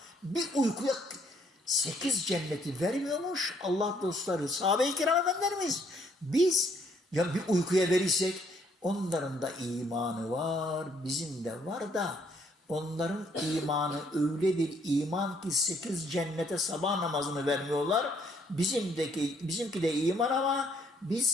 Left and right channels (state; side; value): normal; both; correlation 0.67